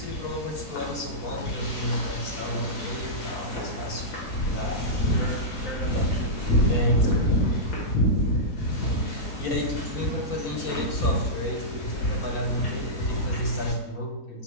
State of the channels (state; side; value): late; right; 4.4 ms